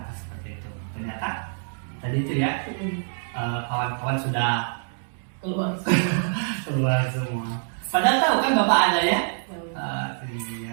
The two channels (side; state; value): left; silent; digital silence